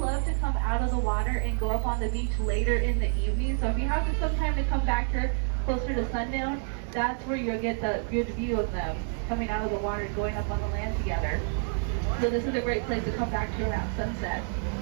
to come out of the water and go up on the beach later in the evening, so if you have some time to come back here closer to sundown, that's where you'll get the good view of them coming out of the water and going up on the land together. So this is a great place to come back to around sunset.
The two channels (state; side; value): silent; left; 55 dB below the other